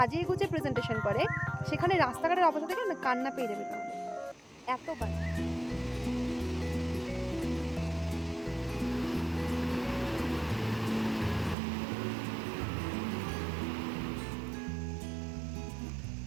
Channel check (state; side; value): drops out; left; at 11.6 s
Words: গুছিয়ে প্রেজেন্টেশন করে, সেখানে রাস্তাঘাটের অবস্থা দেখে না কান্না পেয়ে যাবে তোমাদের, এত বাজে।